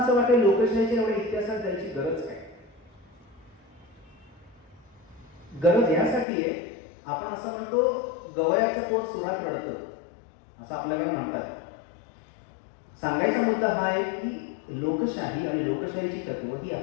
वाटेल लोकशाहीच्या एवढ्या इतिहासात जायची गरज काय? गरज यासाठी आहे, आपण असं म्हणतो गवयाचं पोट सुरात रडतं असं आपल्याकडे म्हणतात. सांगायचा मुद्दा हा आहे की लोकशाही आणि लोकशाहीची तत्व ही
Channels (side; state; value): right; drops out; at 6.2 s